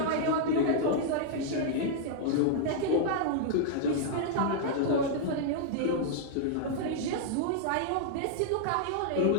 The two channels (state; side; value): different; both; correlation -0.01